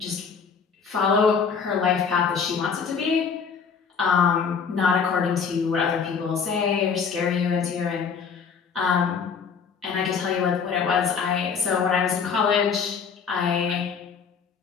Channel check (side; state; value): right; quieter; 6.1 dB